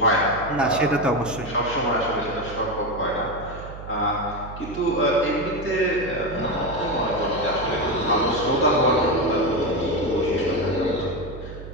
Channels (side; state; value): right; noise; hum, 12 dB below the sound